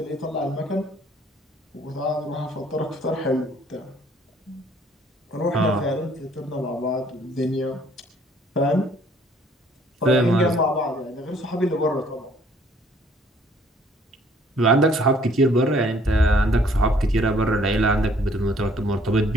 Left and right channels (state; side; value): normal; both; correlation 0.60